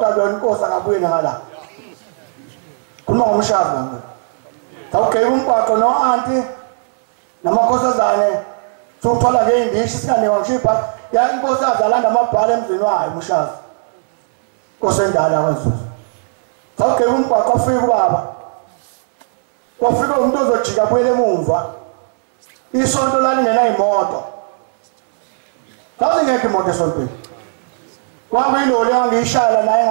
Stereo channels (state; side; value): silent; left; digital silence